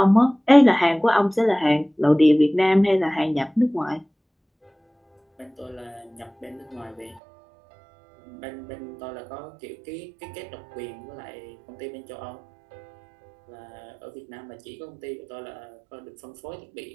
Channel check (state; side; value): drops out; left; at 7.2 s